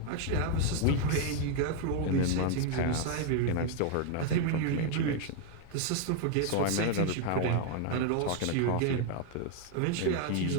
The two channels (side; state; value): both; different; correlation 0.00